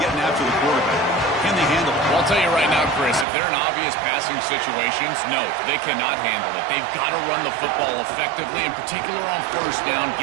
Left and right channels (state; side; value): drops out; left; at 3.2 s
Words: after the quarterback. Can they handle it? Well, I'll tell you right now, Chris, if they're in obvious passing situations, no, they cannot handle it. They've got to run the football effectively, in particular on first down.